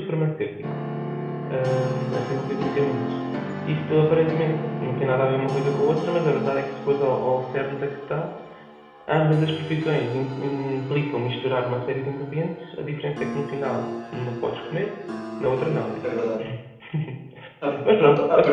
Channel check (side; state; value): both; identical; correlation 1.00